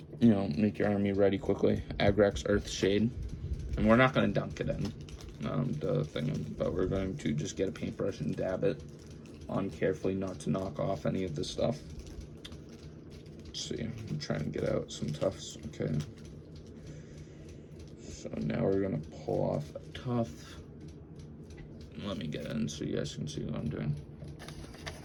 make your army ready quickly. Agrax Earthshade, and we're not going to dunk it in the thing, but we're going to just get a paintbrush and dab it on carefully, not to knock off any of this stuff. Let's see, I'm trying to get out some tufts. Okay. So now we're gonna pull off a tuft. Let me get in so you guys can see what I'm doing.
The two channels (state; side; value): identical; both; correlation 1.00